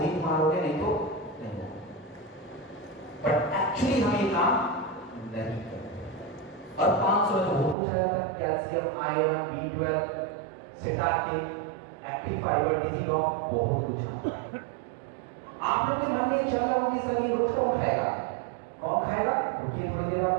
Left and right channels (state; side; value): drops out; left; at 7.8 s